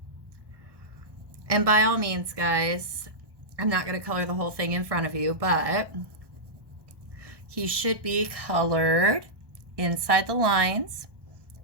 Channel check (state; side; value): late; left; 1.1 ms